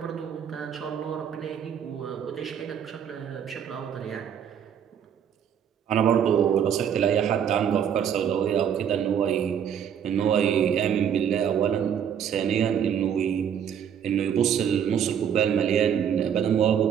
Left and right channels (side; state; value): left; quieter; 8.5 dB